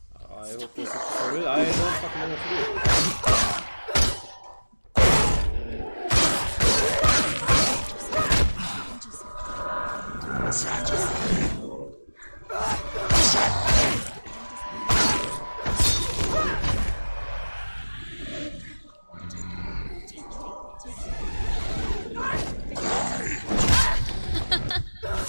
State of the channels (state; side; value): inverted; both; correlation -1.00